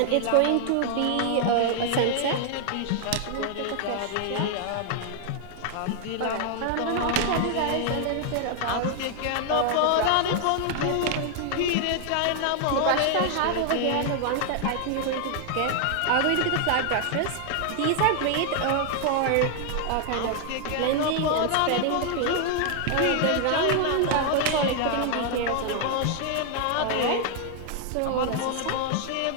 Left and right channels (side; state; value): both; different; correlation 0.00